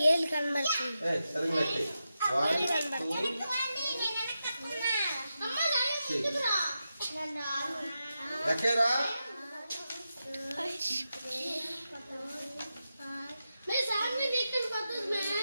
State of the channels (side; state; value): both; inverted; correlation -0.89